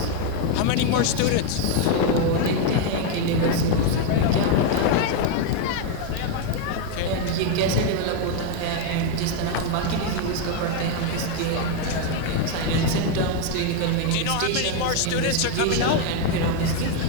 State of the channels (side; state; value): both; different; correlation 0.01